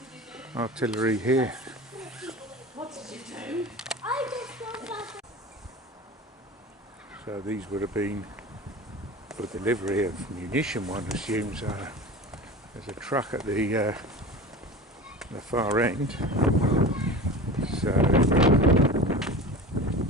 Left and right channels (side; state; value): both; normal; correlation 0.33